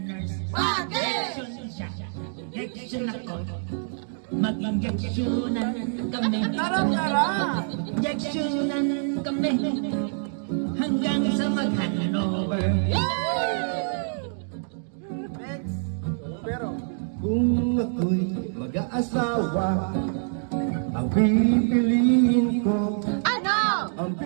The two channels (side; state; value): left; silent; digital silence